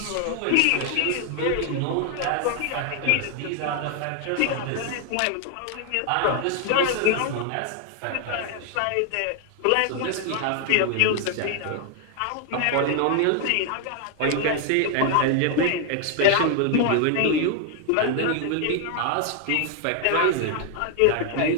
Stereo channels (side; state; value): both; different; correlation 0.00